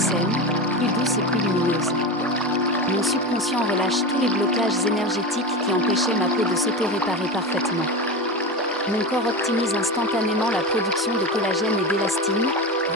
plus douce et plus lumineuse. Mon subconscient relâche tous les blocages énergétiques qui empêchaient ma peau de s'auto-réparer parfaitement. Mon corps optimise instantanément la production de collagène et d'élastine,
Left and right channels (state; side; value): normal; both; correlation 0.23